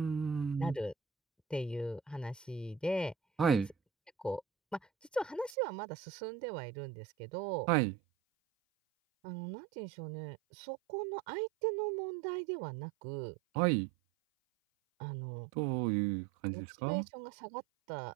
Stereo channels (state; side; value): drops out; left; at 5.6 s